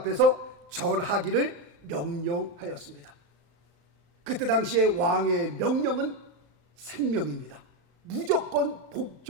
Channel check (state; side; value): late; left; 35 ms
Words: 절하기를 명령하였습니다. 그때 당시에 왕의 명령은 생명입니다. 무조건